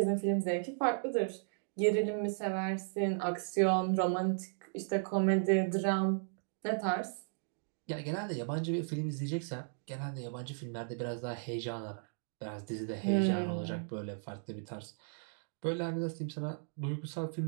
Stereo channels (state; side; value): silent; left; digital silence